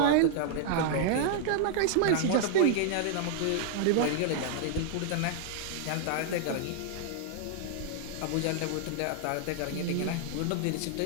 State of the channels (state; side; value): different; both; correlation 0.00